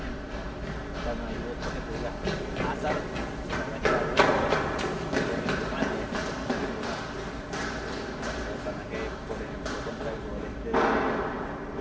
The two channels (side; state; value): both; identical; correlation 1.00